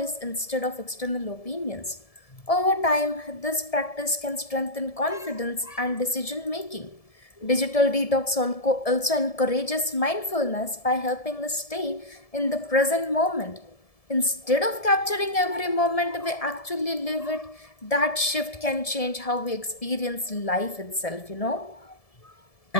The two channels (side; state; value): right; late; 1.7 ms